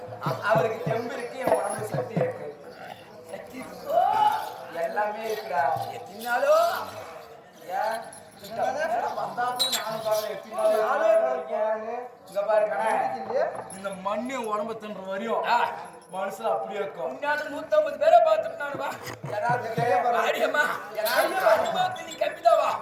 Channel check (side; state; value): both; identical; correlation 1.00